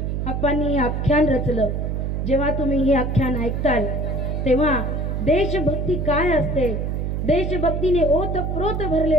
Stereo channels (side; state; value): right; noise; hum, 1 dB below the sound